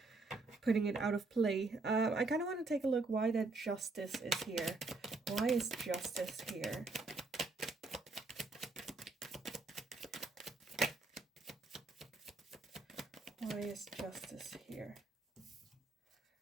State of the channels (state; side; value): quieter; left; 3.5 dB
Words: putting it out of play. I kind of want to take a look why that Justice is here. Why is Justice here? Why is Justice here?